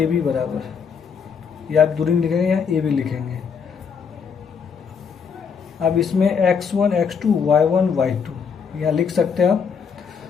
बी बराबर, या आप दूरी लिखेंगे या ए बी लिखेंगे। अब इसमें x1 x2 y1 y2 यहाँ लिख सकते हैं आप।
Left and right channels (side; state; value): right; quieter; 6.3 dB